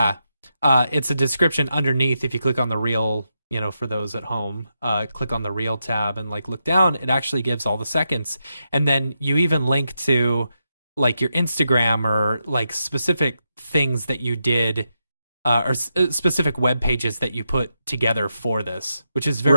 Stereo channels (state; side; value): inverted; both; correlation -0.85